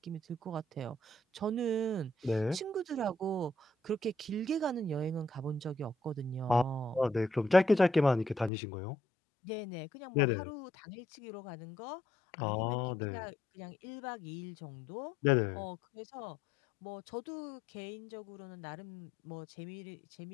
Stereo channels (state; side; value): drops out; right; at 8.5 s